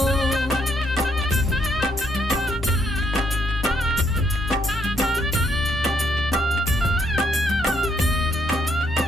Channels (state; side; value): normal; both; correlation 0.73